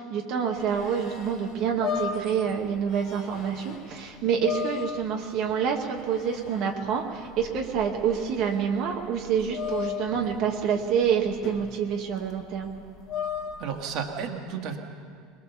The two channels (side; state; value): left; quieter; 5.5 dB